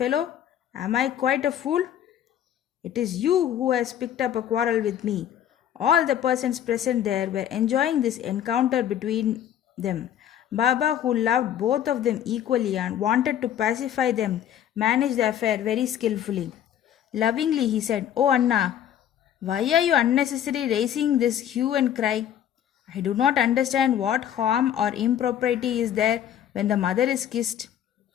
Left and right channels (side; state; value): right; quieter; 10.4 dB